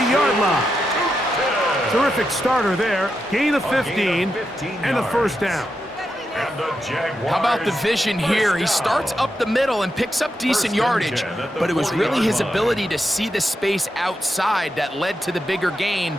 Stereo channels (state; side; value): normal; both; correlation 0.86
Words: line. Terrific starter there. Gain of 15 and a first down. And the Jaguars. How about the vision here? He starts up the middle and picks up decent yardage, but it was really his ability to see the space outside that led to the bigger gain